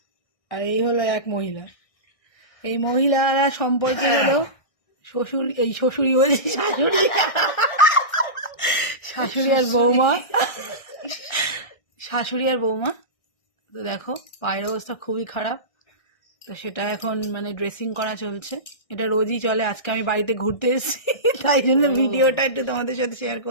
আর এই হলো এক মহিলা। এই মহিলারা সম্পর্কে হলো শ্বশুর, এই শ্বশুরি বলছি, শাশুড়ি, শাশুড়ি আর বৌমা, শাশুড়ি আর বৌমা। তো দেখো পায়ের অবস্থা খুবই খারাপ, তো সেটা এখন মানে ড্রেসিং করা চলছে। এটা রোজই চলে, আজকে আমি বাড়িতে ঘুরতে এসেছি তাই জন্য ভিডিওটা একটু তোমাদের সাথে শেয়ার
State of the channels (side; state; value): right; late; 1.6 ms